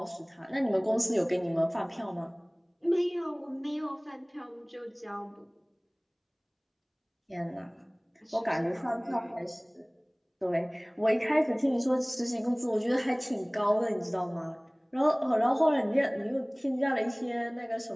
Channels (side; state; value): both; identical; correlation 1.00